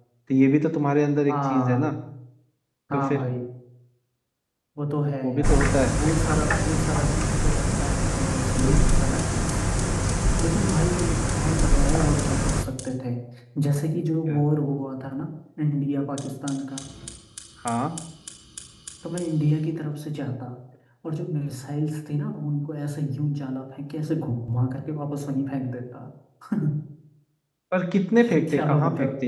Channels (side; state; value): both; identical; correlation 1.00